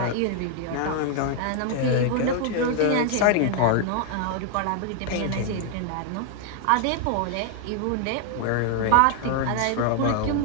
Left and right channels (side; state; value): both; different; correlation 0.00